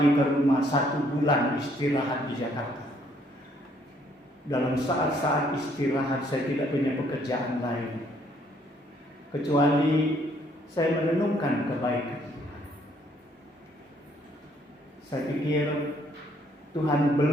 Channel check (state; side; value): normal; both; correlation 0.66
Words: ke rumah 1 bulan istirahat di Jakarta. Dalam saat-saat istirahat saya tidak punya pekerjaan lain kecuali saya merenungkan kebaikan Tuhan. Saya pikir Tuhan